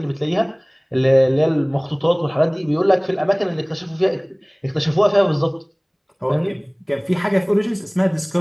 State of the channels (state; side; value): identical; both; correlation 1.00